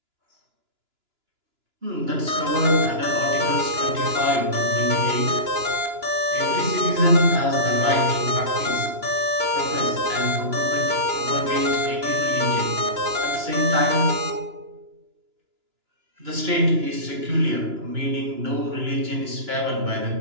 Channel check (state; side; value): late; left; 2.9 ms